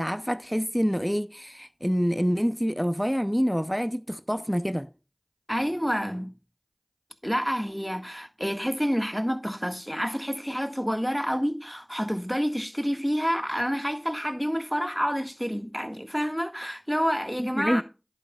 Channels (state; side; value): identical; both; correlation 1.00